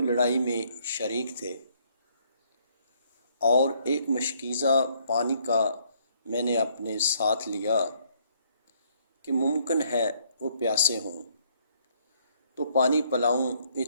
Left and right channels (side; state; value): both; inverted; correlation -0.68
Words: لڑائی میں شریک تھے، اور ایک مشکیزہ پانی کا میں نے اپنے ساتھ لیا کہ ممکن ہے وہ پیاسے ہوں تو پانی پلاؤں۔